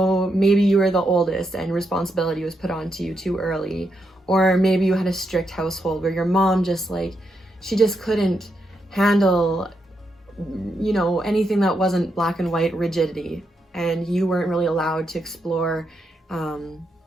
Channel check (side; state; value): both; normal; correlation 0.82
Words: maybe you were the oldest and responsibility was put onto you too early. Or maybe you had a strict household where your mom just like, she just couldn't handle, you know, anything that wasn't black and white rigidity. And you weren't really allowed to explore,